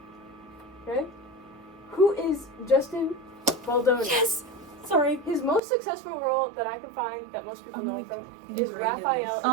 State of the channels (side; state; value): left; drops out; at 5.6 s